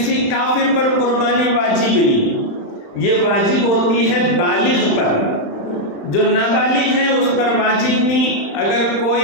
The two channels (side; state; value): right; late; 35 ms